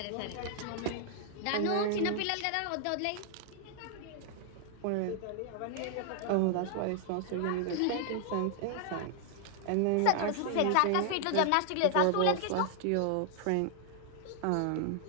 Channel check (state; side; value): different; both; correlation 0.00